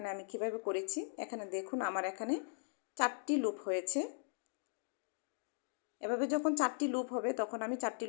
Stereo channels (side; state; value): right; silent; digital silence